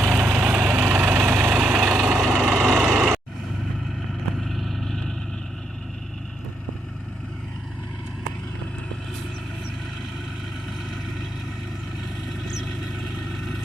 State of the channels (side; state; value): both; normal; correlation 0.79